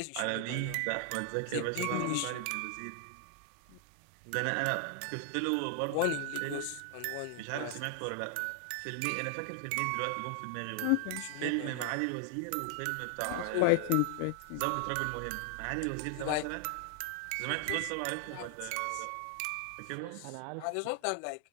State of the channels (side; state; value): both; different; correlation 0.00